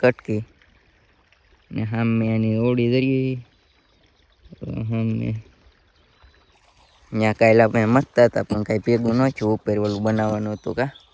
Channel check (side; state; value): both; identical; correlation 1.00